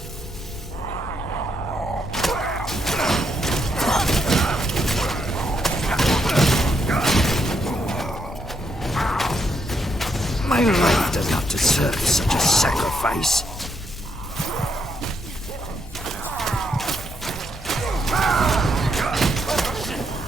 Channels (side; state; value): both; normal; correlation 0.77